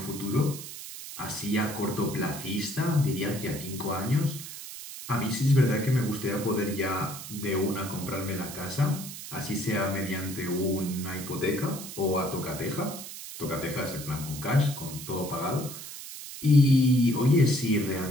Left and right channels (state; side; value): noise; right; hiss, 11 dB below the sound